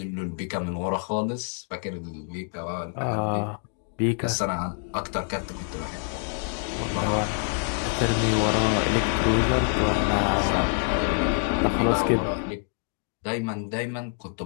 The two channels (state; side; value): silent; right; 57 dB below the other